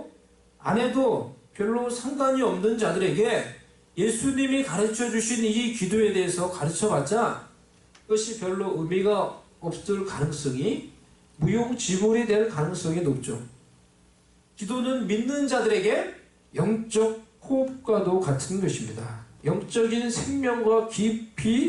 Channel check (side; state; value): both; identical; correlation 1.00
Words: 안 해도 별로 상관이 없는 자들에게 예수님이 가르쳐 주신 이 기도에 대해서 가르쳐 봤자 그것이 별로 의미가 없을 가능성이, 무용지물이 될 가능성이 높죠. 기도는 믿는 자들에게 영적 호흡과도 같은 것입니다. 영적인 생명과